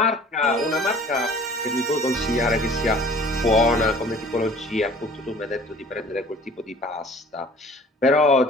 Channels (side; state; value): both; normal; correlation 0.49